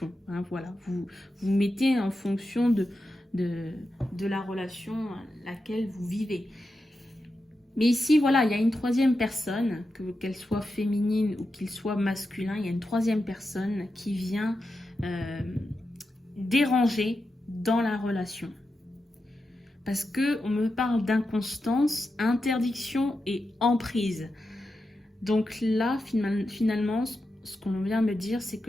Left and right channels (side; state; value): both; normal; correlation 0.89